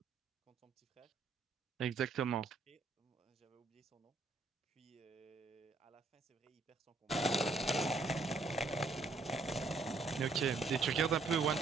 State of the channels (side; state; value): left; quieter; 3.7 dB